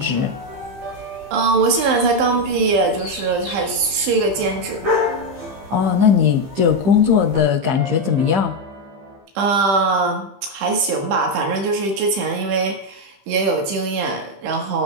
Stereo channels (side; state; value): left; late; 15 ms